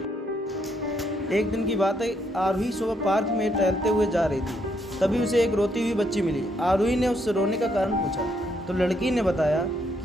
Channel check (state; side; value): normal; both; correlation 0.74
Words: एक दिन की बात है, आरोही सुबह पार्क में टहलते हुए जा रही थी। तभी उसे एक रोती हुई बच्ची मिली। आरोही ने उससे रोने का कारण पूछा तो लड़की ने बताया